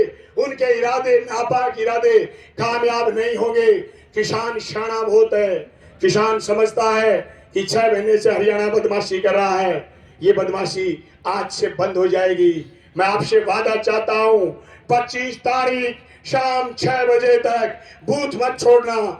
उनके इरादे नापाक इरादे कामयाब नहीं होंगे। किसान शाना बहुत है, किसान समझता है कि 6 महीने से हरियाणा बदमाशी कर रहा है, ये बदमाशी आज से बंद हो जाएगी। मैं आपसे वादा चाहता हूं 25 तारीख शाम 6 बजे तक बूथ मत छोड़ना,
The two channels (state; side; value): identical; both; correlation 1.00